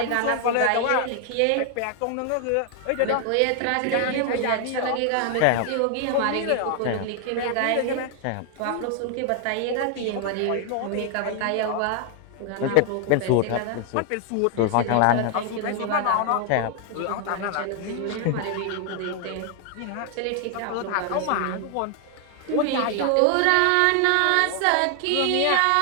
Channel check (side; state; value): both; different; correlation 0.00